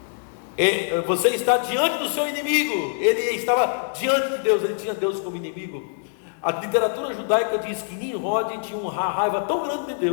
Você está diante do seu inimigo. Ele estava diante de Deus. Ele tinha Deus como inimigo. A literatura judaica diz que Nimrod tinha uma raiva tão grande de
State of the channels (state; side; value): silent; right; digital silence